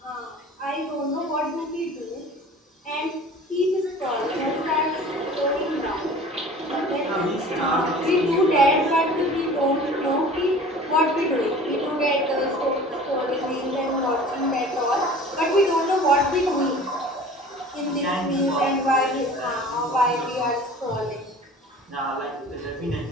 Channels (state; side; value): normal; both; correlation 0.43